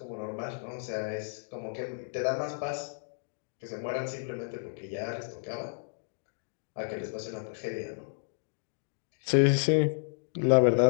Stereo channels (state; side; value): silent; right; digital silence